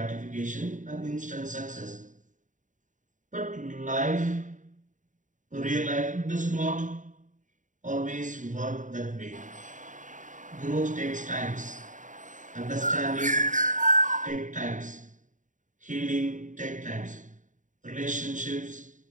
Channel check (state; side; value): late; left; 0.37 ms